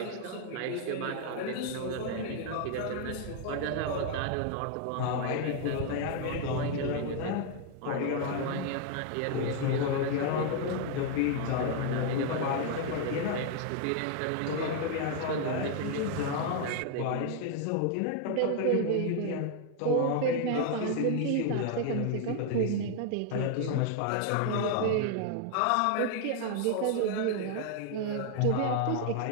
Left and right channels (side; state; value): both; different; correlation 0.00